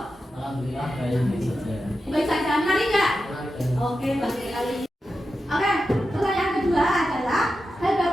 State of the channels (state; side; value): normal; both; correlation 0.90